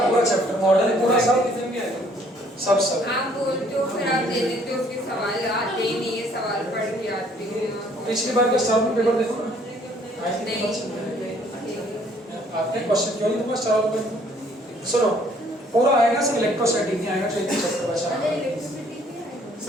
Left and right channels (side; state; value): both; normal; correlation 0.61